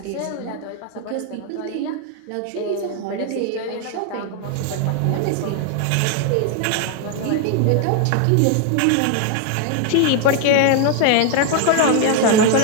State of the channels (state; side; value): different; both; correlation 0.01